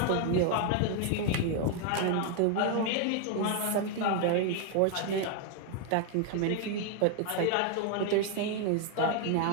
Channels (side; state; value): both; different; correlation 0.00